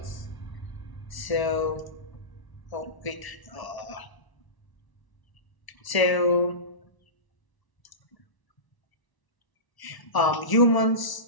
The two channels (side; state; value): right; late; 1.0 ms